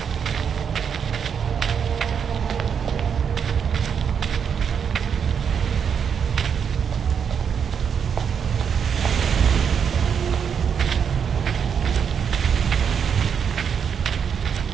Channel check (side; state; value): left; quieter; 7.2 dB